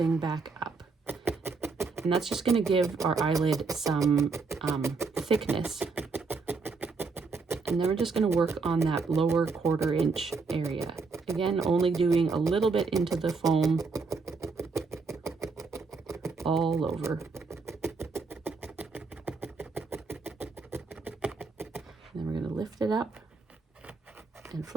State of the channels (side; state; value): left; quieter; 4.4 dB